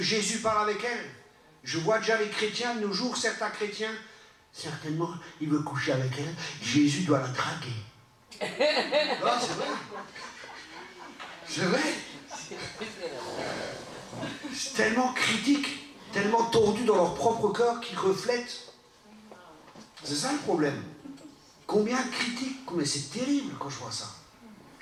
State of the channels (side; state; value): both; identical; correlation 1.00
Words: Jésus parle avec elle? Je vois déjà les chrétiens de nos jours, certains chrétiens, certainement, il veut coucher avec elle. Jésus doit la draguer. Non, c'est vrai. C'est vrai. C'est tellement critique, tellement tordu dans leur propre cœur qu'ils reflètent. C'est ça le problème. Combien de critiques? Mais c'est terrible quand je vois ça.